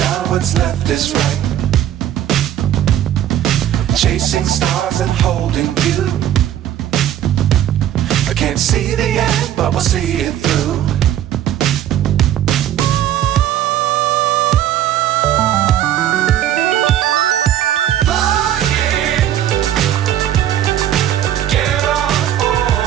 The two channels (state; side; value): quieter; left; 11.4 dB